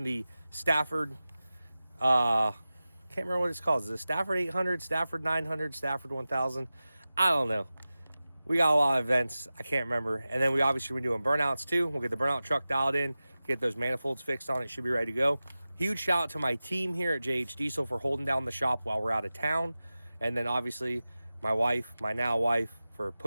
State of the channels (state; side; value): inverted; both; correlation -0.95